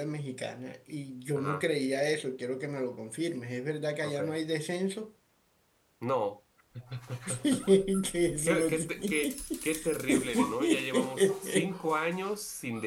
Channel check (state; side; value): identical; both; correlation 1.00